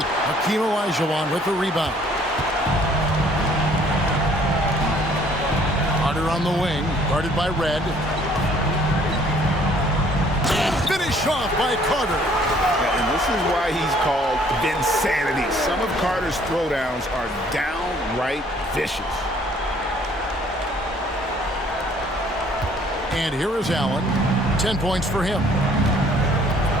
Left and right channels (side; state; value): both; normal; correlation 0.59